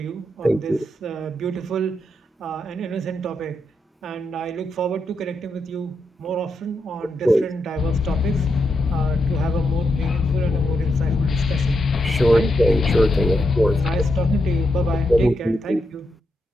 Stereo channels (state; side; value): normal; both; correlation 0.83